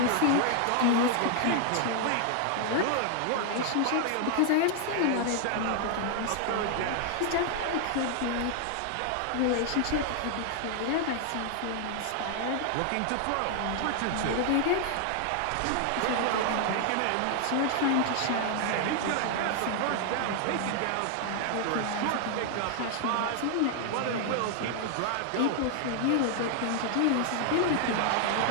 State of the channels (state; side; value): different; both; correlation 0.00